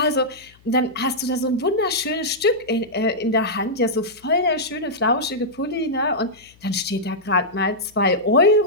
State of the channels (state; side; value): noise; left; hum, 29 dB below the sound